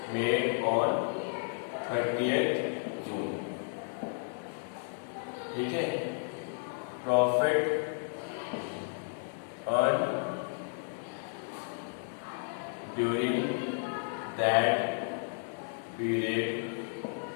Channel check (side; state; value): right; silent; digital silence